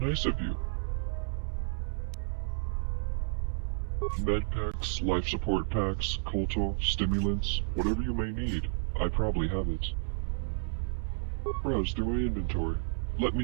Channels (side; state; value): left; silent; 57 dB below the other